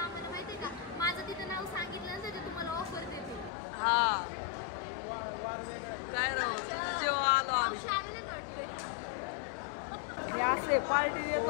माहितीये का, माझं तिथं नाव सांगितलं ना त्याच्यात तुम्हाला ऑफर देते. हा, काय राहू तुझं जेव्हा आलो आम्ही. मी असे पार्टी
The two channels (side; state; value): right; drops out; at 3.5 s